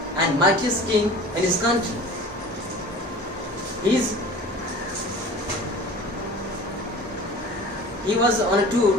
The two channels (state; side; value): normal; both; correlation 0.42